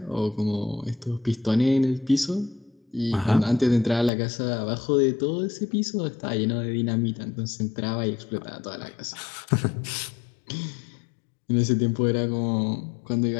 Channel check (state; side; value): drops out; right; at 4.1 s